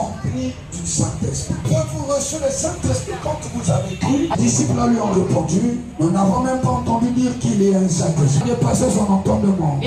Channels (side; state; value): both; identical; correlation 1.00